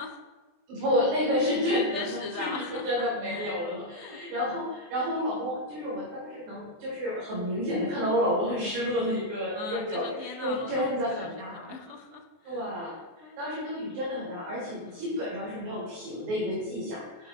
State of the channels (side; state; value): left; late; 23 ms